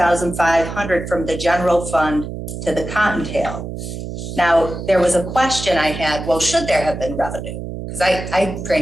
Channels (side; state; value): right; noise; hum, 8 dB below the sound